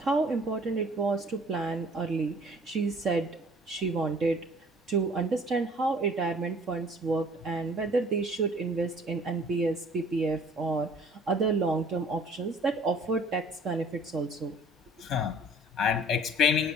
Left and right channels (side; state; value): both; normal; correlation 0.52